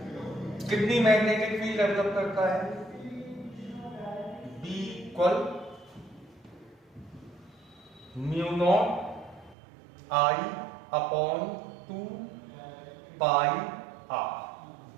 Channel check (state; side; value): drops out; left; at 9.6 s